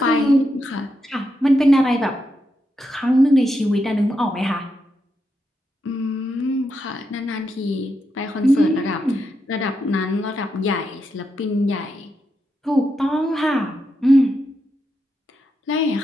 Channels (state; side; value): normal; both; correlation 0.84